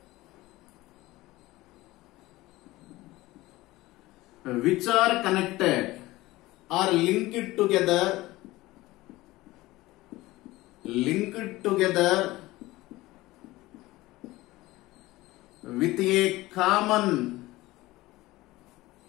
which are connected or linked together with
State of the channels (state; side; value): quieter; right; 18.7 dB